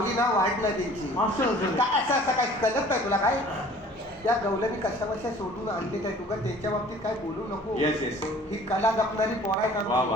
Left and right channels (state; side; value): normal; both; correlation 0.50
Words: ना वाढ नाही त्यांची. काय असं असं काय कळत नाही तुला काय. त्या गवल्यानी कशा बशा सोडून आणले काय तुका त्यांच्या बाबतीत काय बोलू नको. येस येस ही कला जपणारी पोरा वा